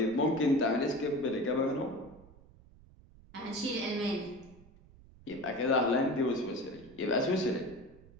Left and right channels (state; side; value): noise; right; rumble, 23 dB below the sound